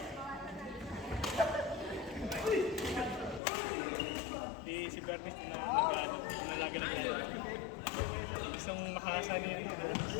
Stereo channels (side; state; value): right; drops out; at 3.4 s